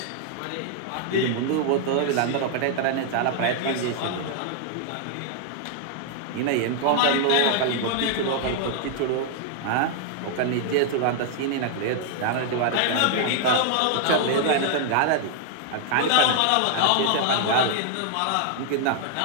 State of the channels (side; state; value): both; different; correlation 0.00